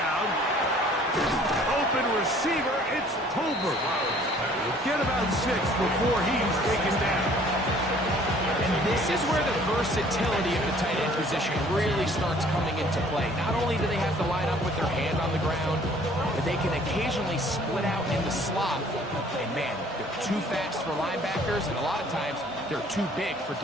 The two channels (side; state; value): both; normal; correlation 0.56